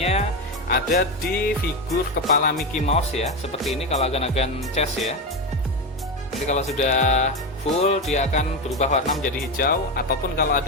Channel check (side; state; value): both; normal; correlation 0.15